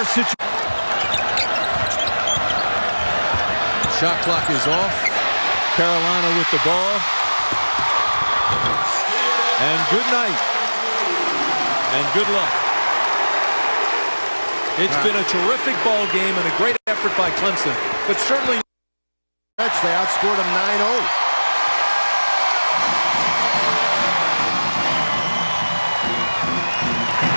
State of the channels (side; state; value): both; inverted; correlation -1.00